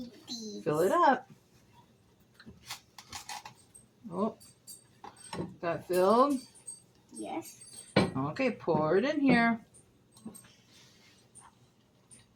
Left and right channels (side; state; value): both; identical; correlation 1.00